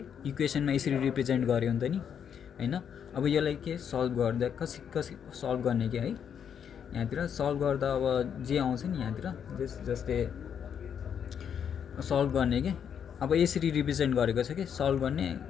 इक्वेसनमा यसरी रिप्रेजेन्ट गर्यो नि त नि हैन अब यसलाई के सल्भ गर्दा कसरी सल्भ गर्ने के है यहाँतिर सल्भ गर्दा अब जे आउँछ नि यहाँतिर जस्तै सल्भ गर्ने के अब यसरी रिप्रेजेन्ट गरेको छ कि सल्भ गर्ने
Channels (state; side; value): quieter; right; 8.0 dB